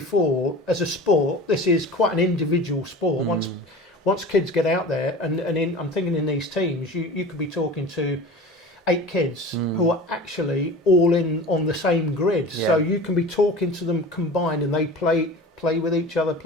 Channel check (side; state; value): both; normal; correlation 0.36